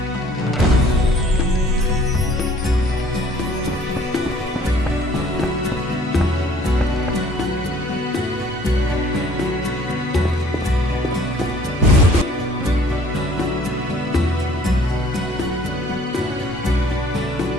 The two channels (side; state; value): both; normal; correlation 0.56